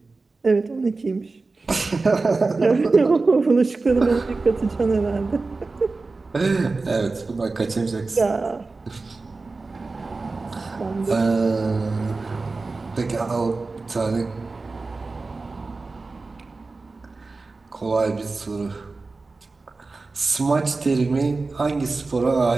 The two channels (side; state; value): left; quieter; 3.7 dB